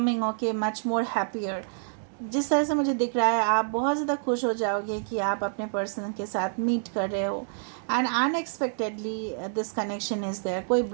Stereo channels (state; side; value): silent; left; digital silence